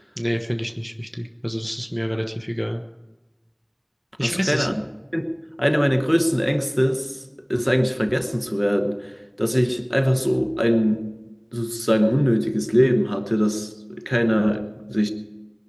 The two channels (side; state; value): both; identical; correlation 1.00